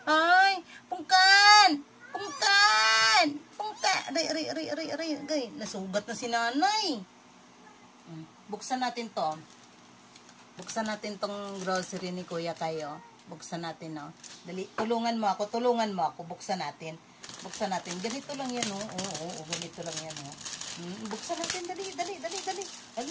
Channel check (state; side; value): identical; both; correlation 1.00